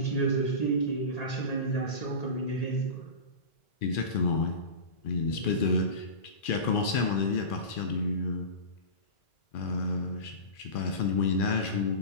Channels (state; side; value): late; right; 2.4 ms